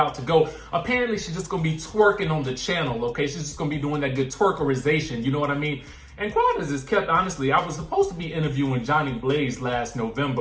to go? Apparently, she's just gonna be twerking on the channel. Okay, she's just gonna be doing that good twerkerization. You know what I mean? And quite as is kept, honestly, I was supposed to be interviewing Johnny Blaze last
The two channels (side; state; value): both; identical; correlation 1.00